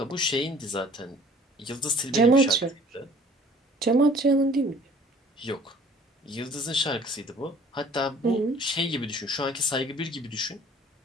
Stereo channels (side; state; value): both; normal; correlation 0.52